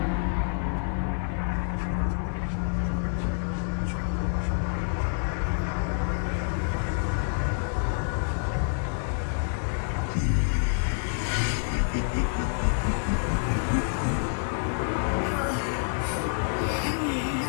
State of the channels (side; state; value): right; silent; digital silence